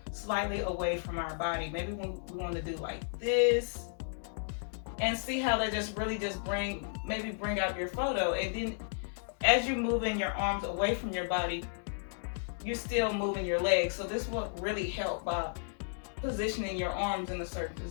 slightly away from our body. Maybe we wanna do like this, and see how they just really just bring out your photo. And then as you're moving your arms away from your body, you're still moving your legs. So this will really help by positioning your arms in a certain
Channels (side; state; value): right; silent; digital silence